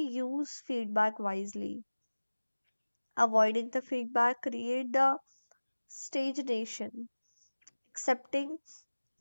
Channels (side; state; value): both; inverted; correlation -1.00